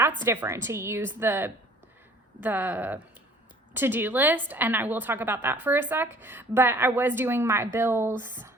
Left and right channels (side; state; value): both; normal; correlation 0.53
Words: different to use the to-do list, and I will talk about that for a sec. But I was doing my bills.